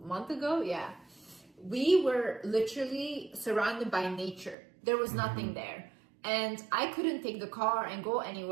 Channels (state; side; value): drops out; left; at 4.5 s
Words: ago, yeah. We were literally surrounded by nature. There was nothing there. And I couldn't take the car and go